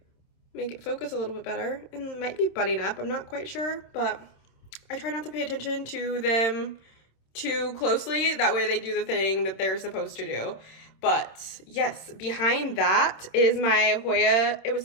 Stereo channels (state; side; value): late; right; 27 ms